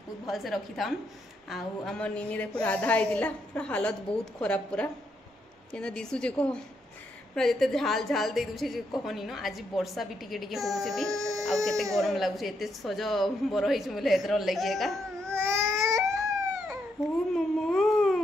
भल से रखी थान। आ हमर निनी देखो राधा आइतिला, पूरा हालत बहुत खराब, पूरा केना दिसु जे को पूरा जिते झाल झाल दे दूचे जे कहनी न। आज वर्षा भी टिके टिके होउचे भी, आ केते गरम लागुचे। एते सज बर होइछ बोले एतर लागि का। ओ मम्मा,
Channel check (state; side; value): normal; both; correlation 0.78